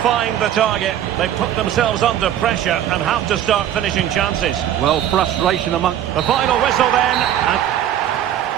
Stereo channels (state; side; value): quieter; left; 11.1 dB